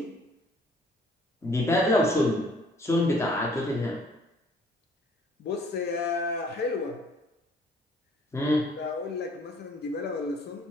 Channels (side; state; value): both; normal; correlation 0.59